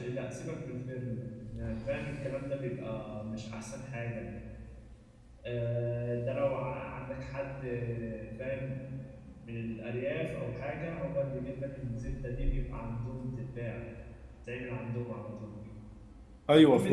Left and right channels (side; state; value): both; identical; correlation 1.00